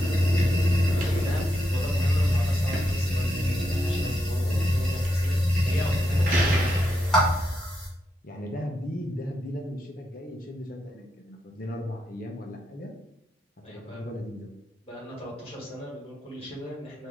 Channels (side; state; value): both; normal; correlation 0.83